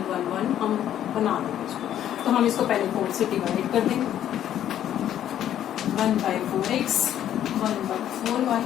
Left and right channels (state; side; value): quieter; right; 11.0 dB